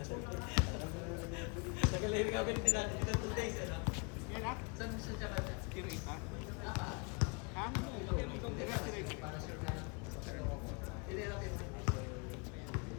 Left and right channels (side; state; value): right; quieter; 32.0 dB